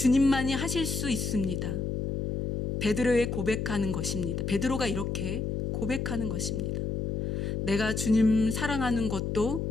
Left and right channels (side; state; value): left; noise; hum, 2 dB below the sound